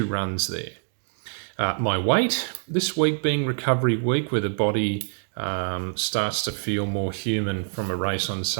runs there. My weight, this week being recovery week where the body starts to feel more human from a race on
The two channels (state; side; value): silent; left; digital silence